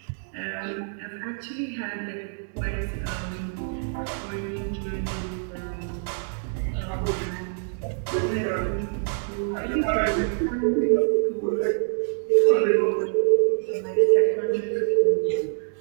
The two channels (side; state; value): left; silent; digital silence